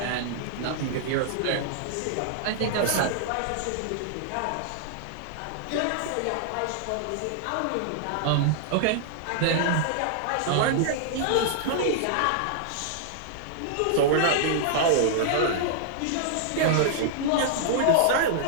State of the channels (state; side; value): different; both; correlation -0.01